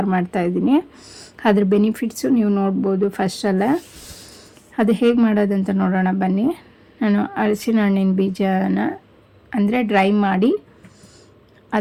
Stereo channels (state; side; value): identical; both; correlation 1.00